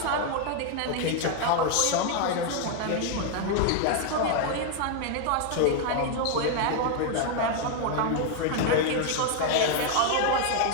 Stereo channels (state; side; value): different; both; correlation 0.00